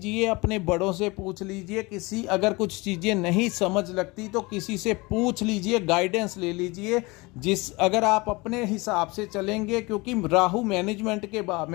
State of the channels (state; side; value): quieter; right; 24.4 dB